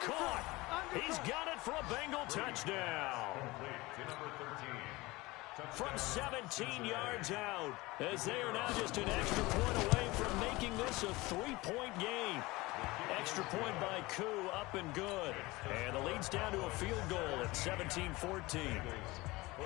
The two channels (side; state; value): right; quieter; 21.4 dB